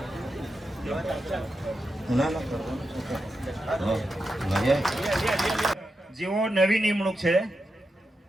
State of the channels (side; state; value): both; normal; correlation 0.88